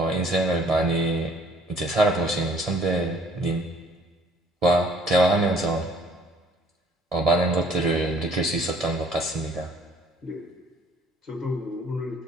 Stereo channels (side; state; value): both; normal; correlation 0.58